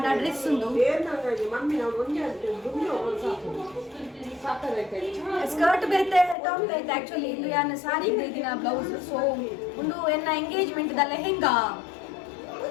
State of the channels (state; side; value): drops out; right; at 6.4 s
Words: ಡ್ರೆಸ್ ಉಂಡು ಸ್ಕರ್ಟ್ ಬೇರೆ ಟಾಪ್ ಐತೆ ಆಕ್ಚುಲಿ ಇದು ಯಾನ ಸಾರಿ ದಿನ ಬ್ಲೌಸ್ ಸೊ ಒಂದು ಎನ್ನ engagement the lehenga